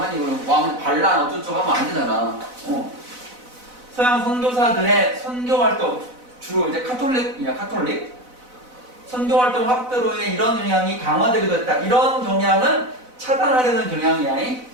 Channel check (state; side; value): late; left; 4.0 ms